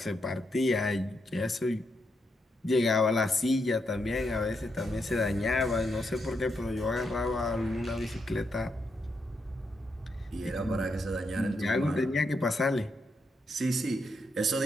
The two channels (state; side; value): normal; both; correlation 0.81